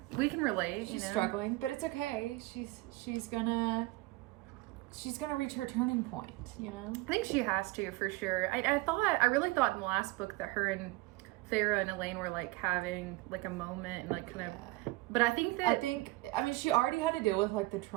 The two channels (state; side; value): quieter; left; 20.5 dB